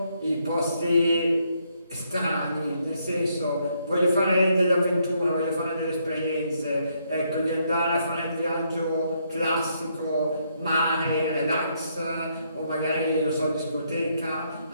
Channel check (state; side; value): inverted; both; correlation -0.74